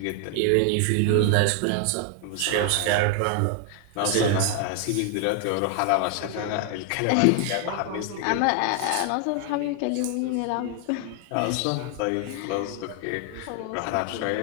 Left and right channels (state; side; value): different; both; correlation 0.00